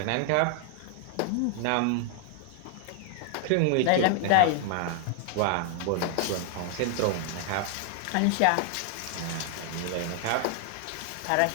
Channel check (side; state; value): both; different; correlation 0.00